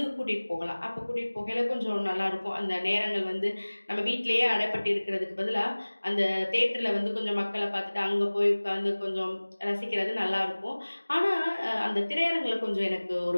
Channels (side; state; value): both; inverted; correlation -1.00